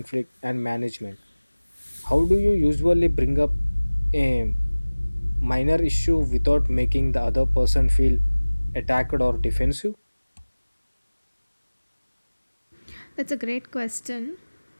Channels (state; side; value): inverted; both; correlation -1.00